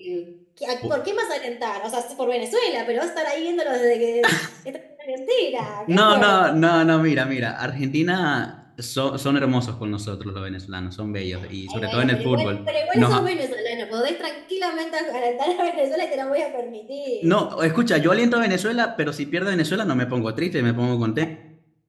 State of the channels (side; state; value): both; identical; correlation 1.00